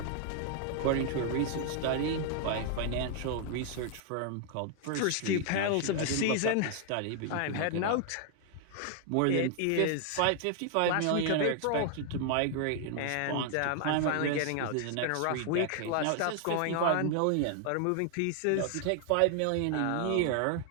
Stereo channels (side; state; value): both; different; correlation 0.00